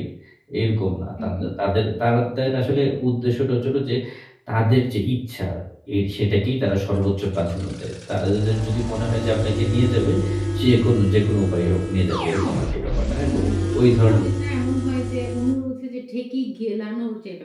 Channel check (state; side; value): identical; both; correlation 1.00